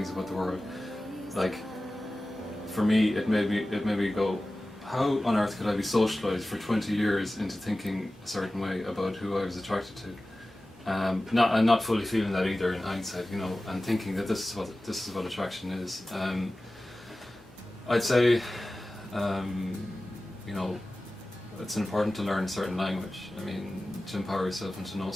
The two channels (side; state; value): both; normal; correlation 0.96